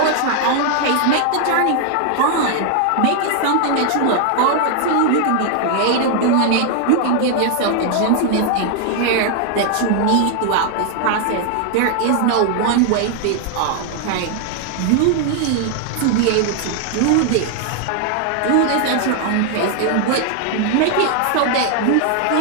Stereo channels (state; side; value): different; both; correlation 0.00